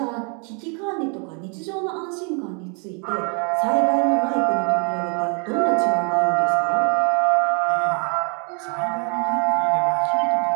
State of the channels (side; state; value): left; quieter; 37.8 dB